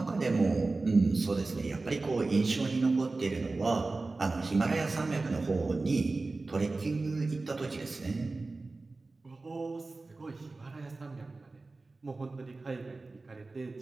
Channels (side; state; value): left; quieter; 3.5 dB